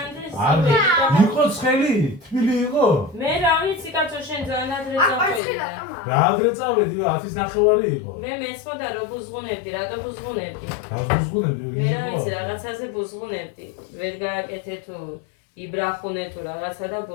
არ იყო ცხელი, თბილი იყო. მე რა ვიცი კაცო შენ ძალიან ადრე წავედი. რა ადრე წავედი, 10-ის ნახევარი იყო. მე მეცმოდა რომ ბუზღუნებდი, რატო ბუზღუნებდი? გაზგუნებდი, მე რა ვიცი რაღაცაზე ბუზღუნებდი. ვერ გააკეთე თუ იბრახუნე თუ რაღაცა და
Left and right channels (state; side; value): drops out; right; at 5.4 s